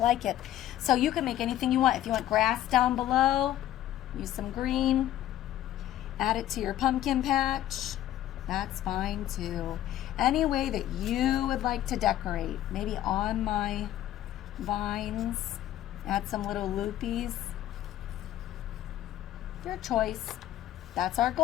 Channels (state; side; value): quieter; right; 12.9 dB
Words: it. So you can make anything you want. If you want grass down below, use some green. Add it to your pumpkin patch. That's fine too. Any way that you would like to decorate. Maybe on my vines. Add some little loopies. Your choice. That's our